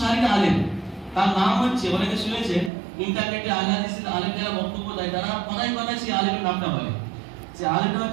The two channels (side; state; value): left; drops out; at 2.7 s